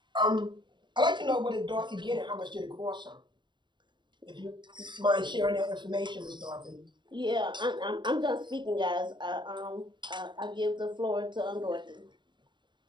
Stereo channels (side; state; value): left; late; 0.22 ms